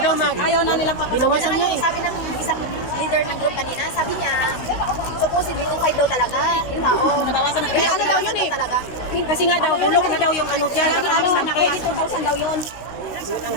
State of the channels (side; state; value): right; late; 16 ms